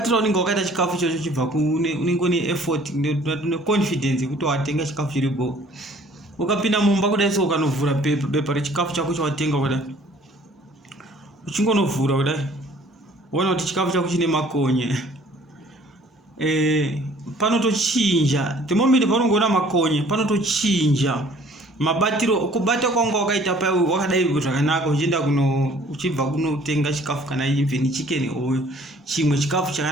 unenge wakaita chikafu chocho chibva unenge une effort ne confidence yekuti watenga chikafu chiripo. Ukapinda mumba kudai so ukanovhura bepa rechikafu chako chawatenga kudai. Uchingonovhura kudai. Uona kuti chikafu chako chine makonye. Panotochinja. The moment panongoona makonye panotochinja. Mabatiro kubata kwanga wakaita pa wakadai zvakanaka uchienda uchibva kunotenga chikafu kana even chicken oil chimwe chikafu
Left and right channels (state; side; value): normal; both; correlation 0.55